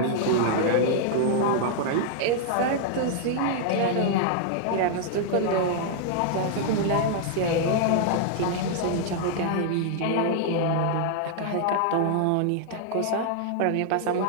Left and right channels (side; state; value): both; different; correlation -0.01